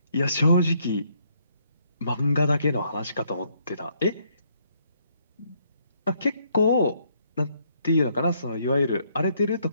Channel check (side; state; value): both; inverted; correlation -0.71